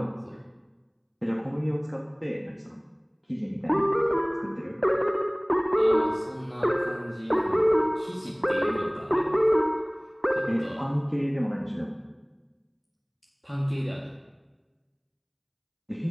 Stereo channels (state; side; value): identical; both; correlation 1.00